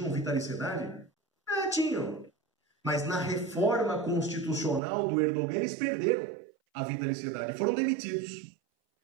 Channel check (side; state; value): left; drops out; at 4.8 s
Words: vitaliciedade? Tinham. Mas na reforma constitucional do Erdogan, eles perderam a vitaliciedade, foram demitidos.